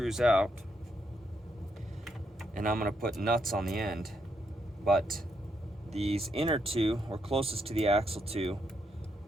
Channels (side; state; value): both; normal; correlation 0.78